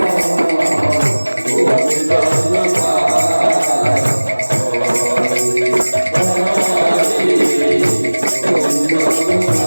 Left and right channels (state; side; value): inverted; both; correlation -1.00